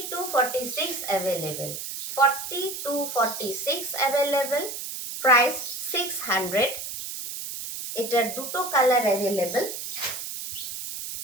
to 46 available. 40 to 46 available. Price 600। এটার দুটো কালার অ্যাভেলেবেল,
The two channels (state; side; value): noise; right; hiss, 7 dB below the sound